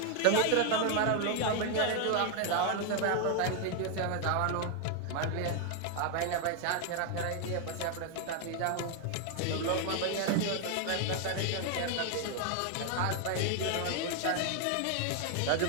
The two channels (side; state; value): both; different; correlation 0.00